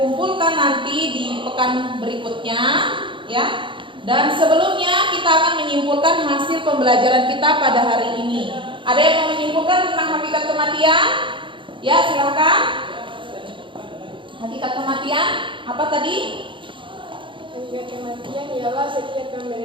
nanti di pekan berikutnya, ya. Dan sebelumnya kita akan menyimpulkan hasil pembelajaran kita pada hari ini. Ada yang mau menyimpulkan tentang hakikat kematian? Ya, silakan. Hakikat kematian apa tadi? Hakikat kematian ialah setiap yang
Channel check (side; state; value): left; late; 0.24 ms